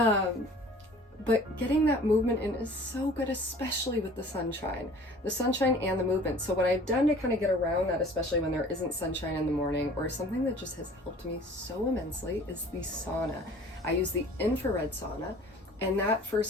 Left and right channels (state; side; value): normal; both; correlation 0.48